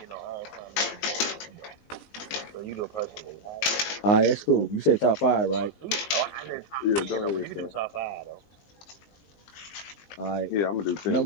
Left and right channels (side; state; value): right; late; 20 ms